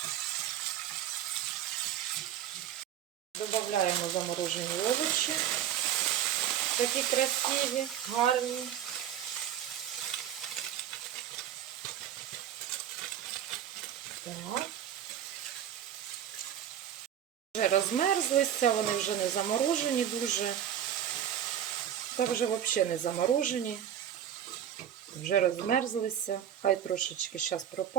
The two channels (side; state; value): left; quieter; 10.1 dB